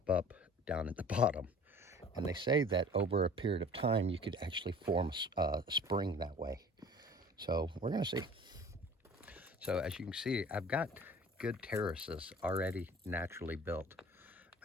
up down at the bottom. And they say that over a period of time, you could actually form a spring that way. So we're going to see. So as you can see, I've got good terraces already naturally built.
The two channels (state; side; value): normal; both; correlation 0.46